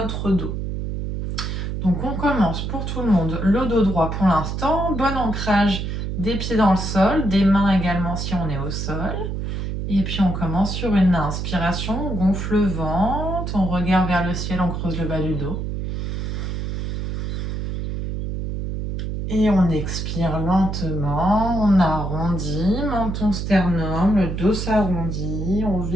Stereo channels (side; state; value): right; noise; hum, 3 dB below the sound